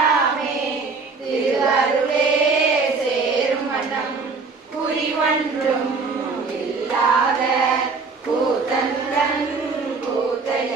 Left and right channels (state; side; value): quieter; left; 4.4 dB